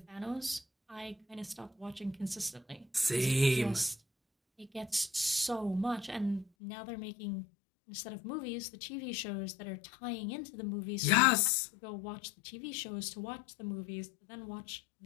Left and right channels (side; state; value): right; drops out; at 6.5 s